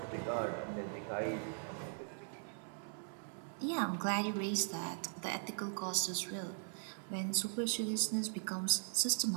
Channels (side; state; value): left; silent; 51 dB below the other